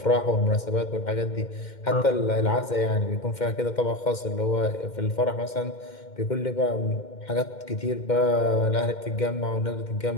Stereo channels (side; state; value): right; late; 2.1 ms